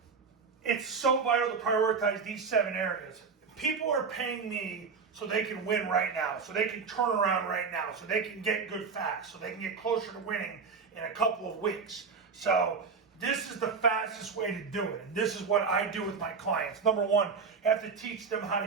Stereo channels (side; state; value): left; quieter; 5.2 dB